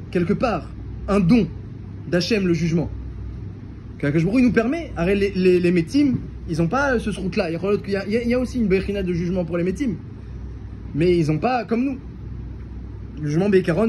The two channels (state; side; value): identical; both; correlation 1.00